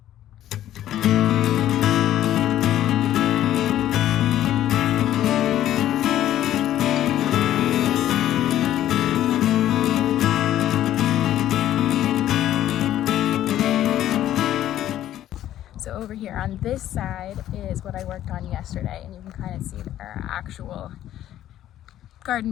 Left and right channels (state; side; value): quieter; right; 12.4 dB